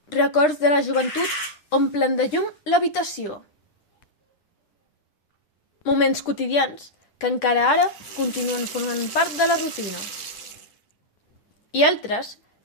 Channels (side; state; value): right; late; 9.9 ms